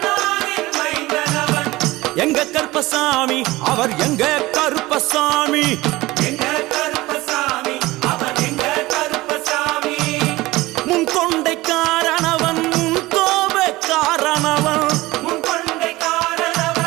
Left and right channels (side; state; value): left; quieter; 19.4 dB